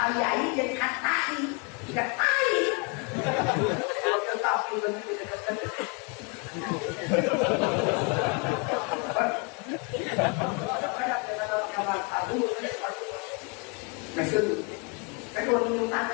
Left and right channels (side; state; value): right; quieter; 33.3 dB